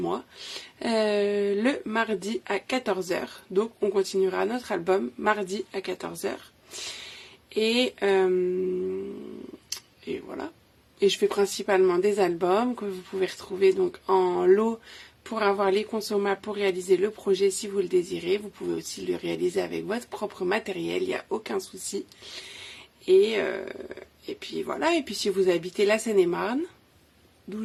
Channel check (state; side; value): identical; both; correlation 1.00